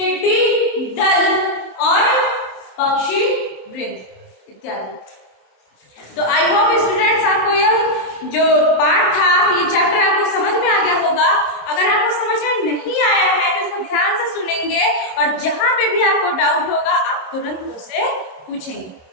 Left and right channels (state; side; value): late; right; 27 ms